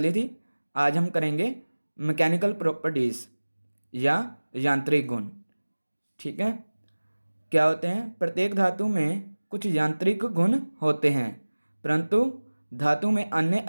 थी। आज हम करेंगे मैकेनिकल प्रॉपर्टीज़ या यांत्रिक गुण। ठीक है। क्या होते हैं? प्रत्येक धातु में कुछ यांत्रिक गुण होते हैं, परंतु धातु में अन्य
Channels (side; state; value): both; inverted; correlation -1.00